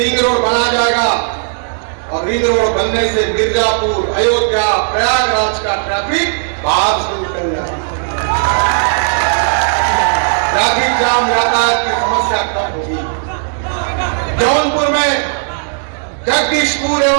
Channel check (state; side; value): silent; left; digital silence